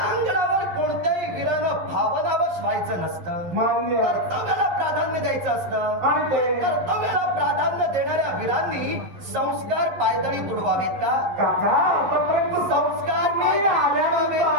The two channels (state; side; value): late; left; 11 ms